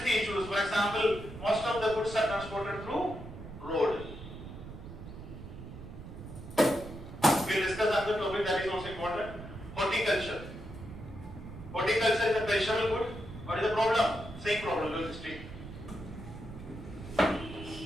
issues. For example, most of the goods are transported through road. We'll discuss another topic that is also important. Horticulture. Horticulture is a perishable good. What is the problem? Same problem, logistic.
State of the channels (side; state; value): right; noise; rumble, 12 dB below the sound